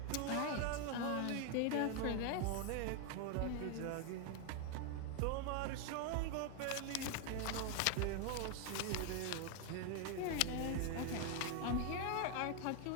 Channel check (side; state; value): both; different; correlation 0.01